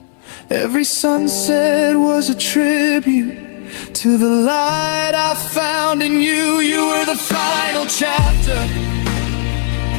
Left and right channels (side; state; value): right; silent; 69 dB below the other